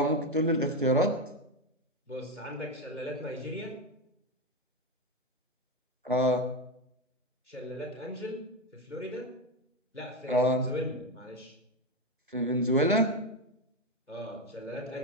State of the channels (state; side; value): normal; both; correlation 0.12